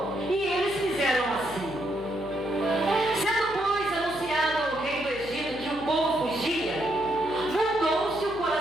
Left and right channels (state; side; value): noise; left; hum, 16 dB below the sound